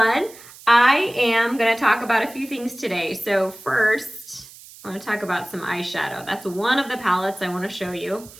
I am going to talk about a few things today. So first, I want to talk about some eyeshadow. That's one of the palettes I want to show you.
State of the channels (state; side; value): noise; right; hiss, 20 dB below the sound